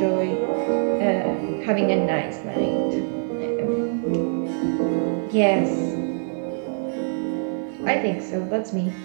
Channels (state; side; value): silent; left; 56 dB below the other